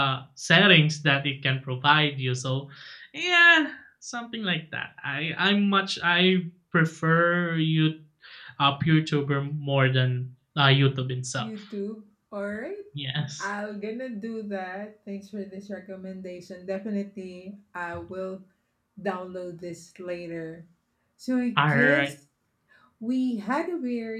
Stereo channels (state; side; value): identical; both; correlation 1.00